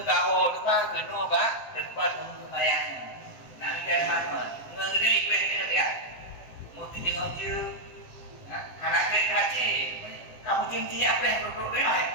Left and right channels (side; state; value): right; late; 7.8 ms